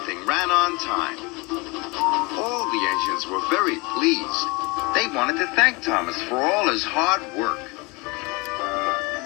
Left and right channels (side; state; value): right; quieter; 26.7 dB